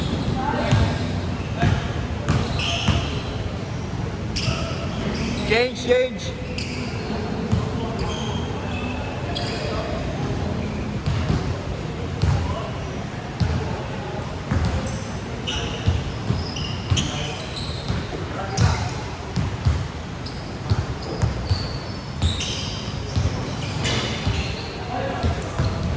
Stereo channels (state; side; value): identical; both; correlation 1.00